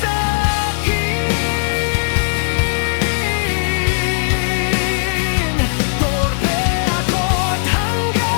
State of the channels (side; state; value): right; silent; digital silence